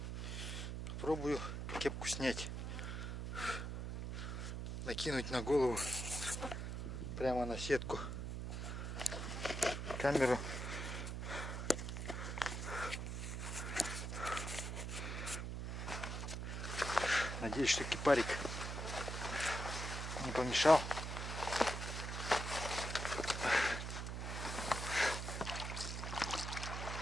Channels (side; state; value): right; noise; hum, 4 dB below the sound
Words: Пробую кепку снять. Накинуть на голову. Прямо на сетку. Камеру. Надеюсь, что кипарик не помешал.